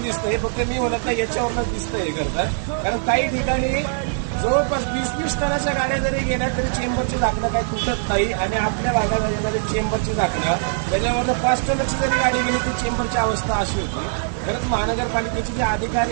दिसतं, हे फक्त मी म्हणत नाही, याच्यावरच दिसतं हे करतात. कारण काही ठिकाणी जवळपास 20-20 टनाच्या गाड्या जरी गेल्या तरी चेंबरची झाकणं काही तुटत नाही. आणि आपल्या भागात येणारी चेंबरची झाकणं त्याच्यावरनं 5 टनाची जरी गाडी गेली तर चेंबरची अवस्था अशी होती. खरंच महानगरपालिकेचे जे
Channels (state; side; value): silent; left; digital silence